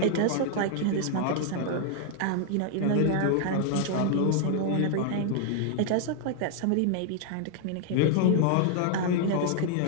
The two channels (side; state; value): both; different; correlation 0.00